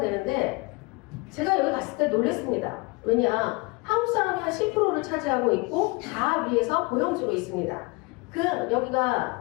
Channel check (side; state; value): right; quieter; 26.2 dB